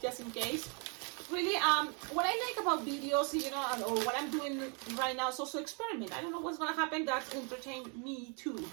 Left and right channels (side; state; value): left; quieter; 36.6 dB